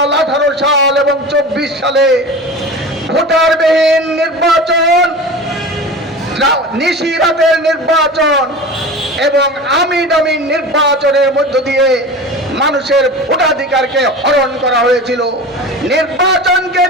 18 সাল এবং 24 সালে ভোটারবিহীন নির্বাচন, নিশিরাতের নির্বাচন এবং আমিন নির্বাচনের মধ্য দিয়ে মানুষের ভোটাধিকারকে হরণ করা হয়েছিল, নির্বাচনকে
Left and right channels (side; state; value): both; normal; correlation 0.33